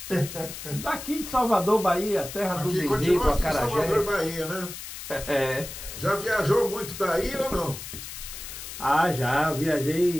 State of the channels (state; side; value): noise; left; hiss, 10 dB below the sound